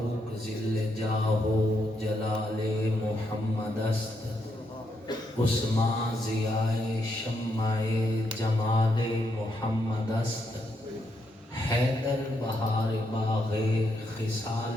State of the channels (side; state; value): both; normal; correlation 0.79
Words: ذل جاہ و جلال محمد است، عثمان ضیاء شمع جمال محمد است، حیدر بہار باغ